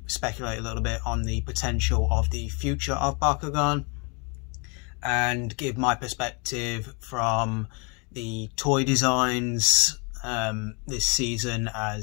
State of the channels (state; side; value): quieter; right; 33.0 dB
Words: speculate a little bit on the potential of the future of Bakugan, and give my perspective from the toy designs this season,